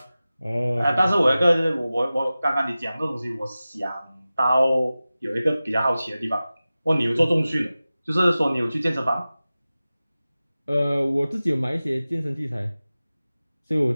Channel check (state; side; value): inverted; both; correlation -0.96